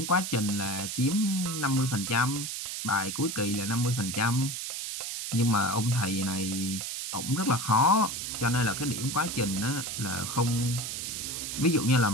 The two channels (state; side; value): noise; right; hiss, 5 dB below the sound